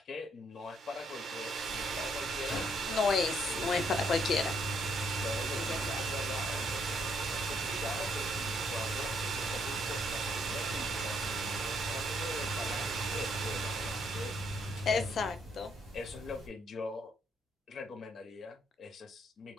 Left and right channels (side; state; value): both; normal; correlation 0.71